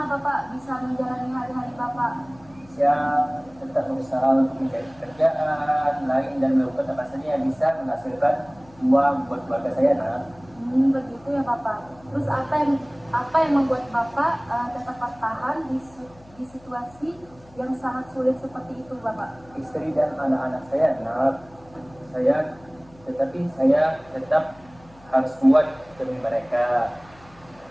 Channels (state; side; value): noise; left; hum, 26 dB below the sound